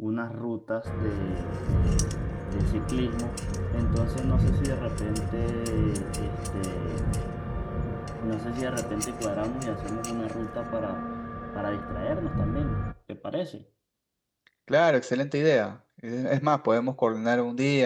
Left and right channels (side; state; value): both; identical; correlation 1.00